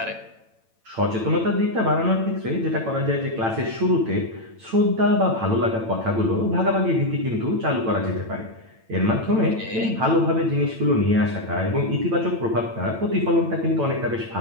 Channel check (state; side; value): late; left; 9.0 ms